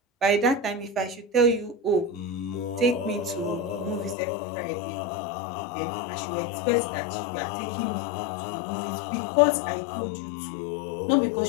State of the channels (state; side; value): drops out; right; at 4.2 s